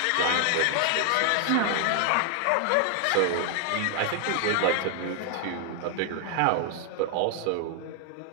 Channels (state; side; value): different; both; correlation 0.00